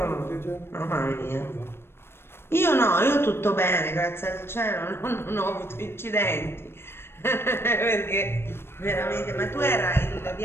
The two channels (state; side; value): late; right; 0.12 ms